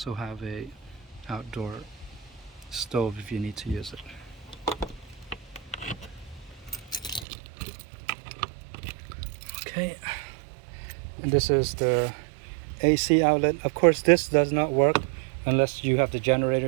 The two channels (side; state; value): left; drops out; at 7.2 s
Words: have a outdoor stove if you need to use it. Okay, and this is the AC outlet. Of course, this does not work unless you have the